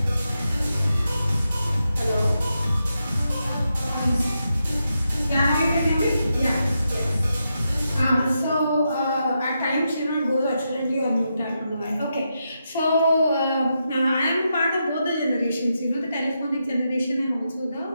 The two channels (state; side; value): inverted; both; correlation -0.85